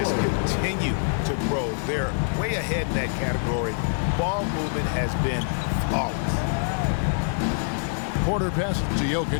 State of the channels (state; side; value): silent; right; digital silence